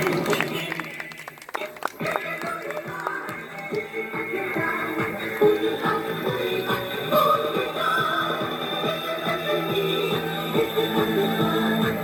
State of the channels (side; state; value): both; identical; correlation 1.00